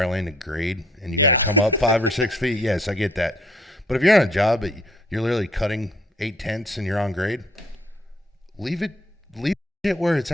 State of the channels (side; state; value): both; normal; correlation 0.62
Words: lane to grade and you got to come up 5 or 6 feet, yes, I get that. But if you're on a job that you're literally cutting 8/10 and you're on grade, leave it where it's